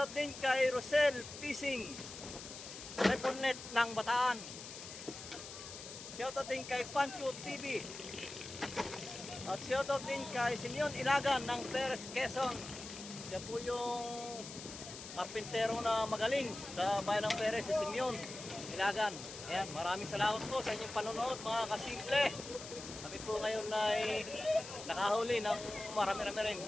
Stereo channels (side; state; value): left; noise; hiss, 11 dB below the sound